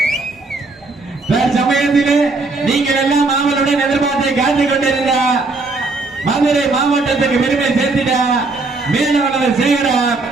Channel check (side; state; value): left; quieter; 3.5 dB